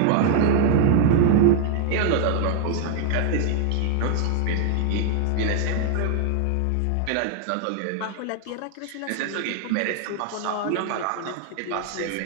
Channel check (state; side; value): different; both; correlation -0.01